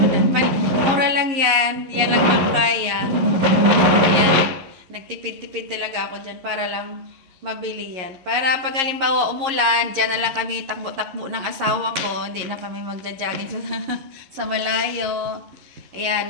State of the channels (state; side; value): late; left; 11 ms